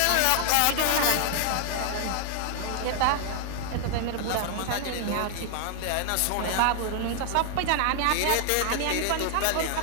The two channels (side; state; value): both; different; correlation 0.00